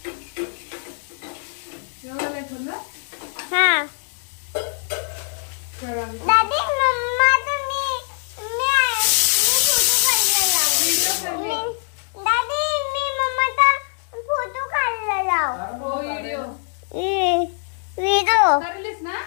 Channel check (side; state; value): right; silent; digital silence